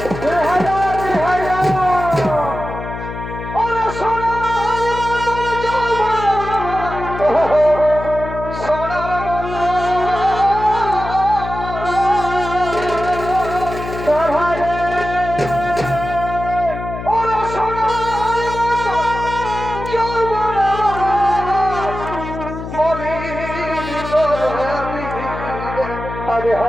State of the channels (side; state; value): left; noise; hum, 8 dB below the sound